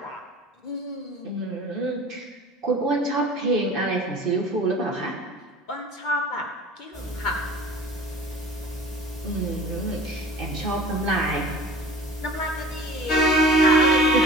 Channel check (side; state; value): both; normal; correlation 0.41